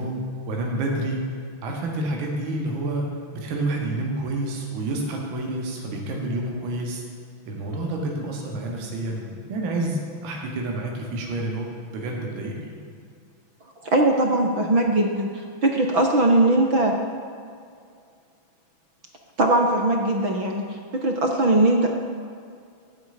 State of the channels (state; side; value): late; left; 6.1 ms